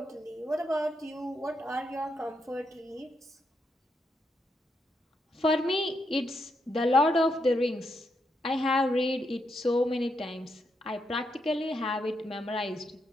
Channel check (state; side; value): normal; both; correlation 0.81